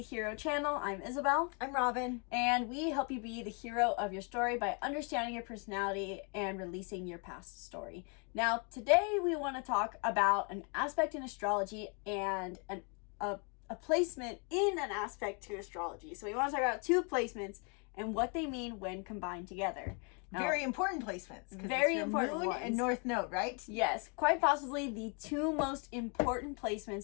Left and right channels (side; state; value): right; quieter; 36.5 dB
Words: Hero channel. I'm Isabel. I'm Robin. And we help you be the hero of your story by understanding your personality and releasing your past story. Now, today we want to talk about an aspect in astrology and a placement in an aspect to astrology. So we want to talk about two placements and what they mean when combined together. Now, very important placements. Very important moon ones. And north node, right? Yes, quite possibly the two most important